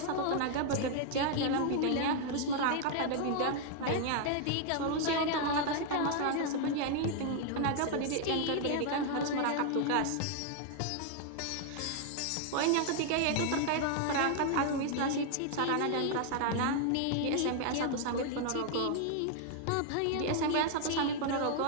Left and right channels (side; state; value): both; different; correlation 0.00